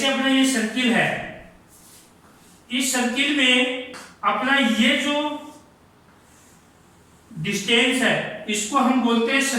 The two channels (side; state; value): both; identical; correlation 1.00